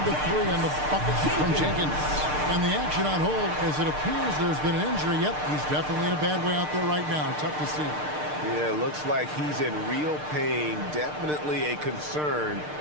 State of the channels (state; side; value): late; left; 6.6 ms